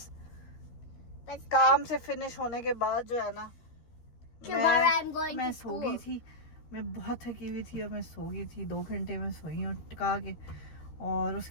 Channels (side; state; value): right; late; 13 ms